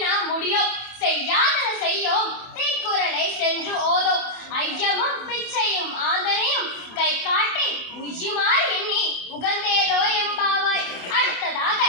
நாம் முடியோம், செய்யாதன செய்யோம் தீக்குறளை சென்று ஓதோம், ஐயமும் பிச்சையும் ஆந்தனையும் கை காட்டி உய்யுமாறு எண்ணி உகந்தேலோ எம்பாவாய். அடுத்ததாக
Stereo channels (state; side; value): late; right; 27 ms